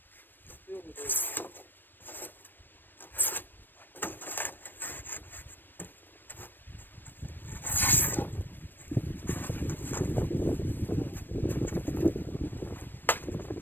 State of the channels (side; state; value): right; late; 0.093 ms